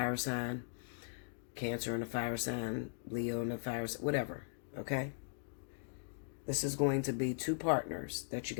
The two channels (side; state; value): right; silent; digital silence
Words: sign, Cancer and a fire sign, Leo and a fire sign, whatever, okay? This is going to be two partners that you